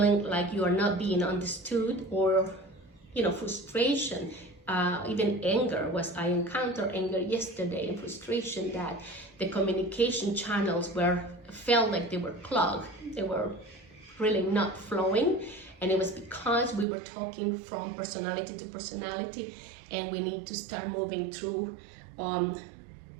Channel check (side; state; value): left; drops out; at 16.9 s